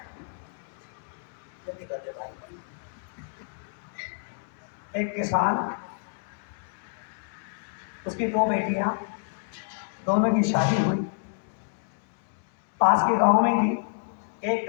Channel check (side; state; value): right; silent; digital silence